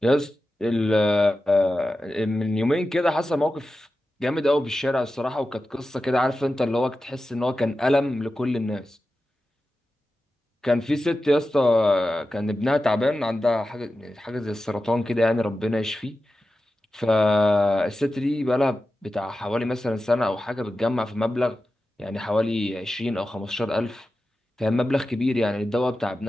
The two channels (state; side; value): normal; both; correlation 0.93